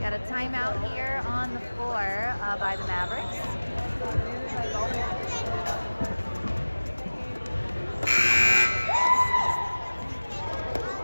a timeout here on the floor by the Mavericks.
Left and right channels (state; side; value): inverted; both; correlation -1.00